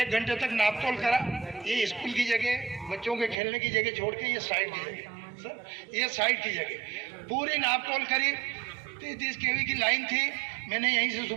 घंटे तक नापतोल करा। ये स्कूल की जगह, बच्चों के खेलने की जगह छोड़ के ये साइड की जगह, सर ये साइड की जगह पूरी नापतोल करी। 33 kV की लाइन थी। मैंने यहीं से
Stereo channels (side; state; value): left; drops out; at 3.4 s